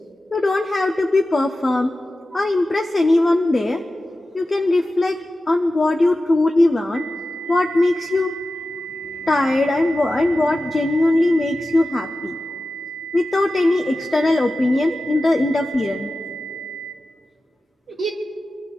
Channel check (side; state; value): both; normal; correlation 0.94